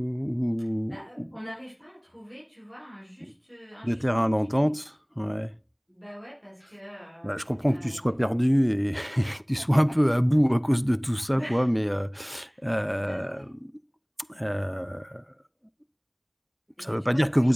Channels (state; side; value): identical; both; correlation 1.00